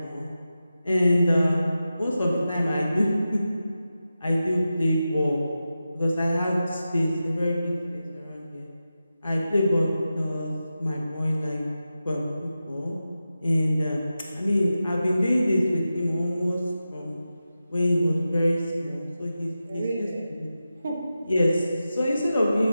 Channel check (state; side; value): inverted; both; correlation -0.92